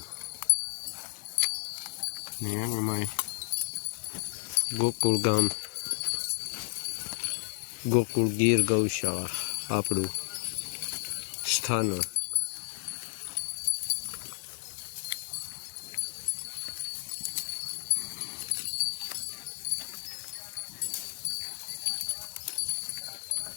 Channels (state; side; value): silent; right; digital silence